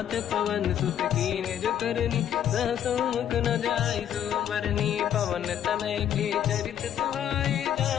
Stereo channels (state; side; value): quieter; right; 10.0 dB